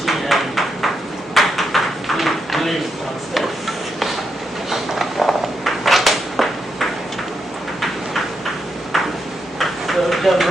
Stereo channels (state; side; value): normal; both; correlation 0.82